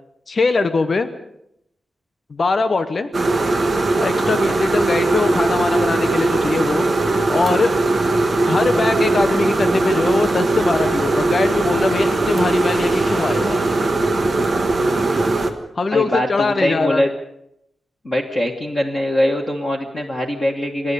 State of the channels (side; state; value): both; normal; correlation 0.90